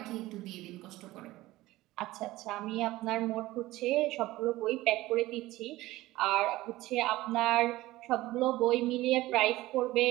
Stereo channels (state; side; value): quieter; left; 17.5 dB